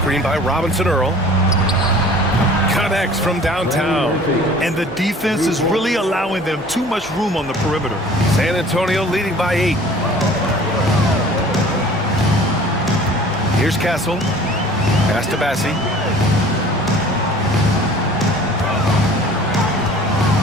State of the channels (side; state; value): both; normal; correlation 0.47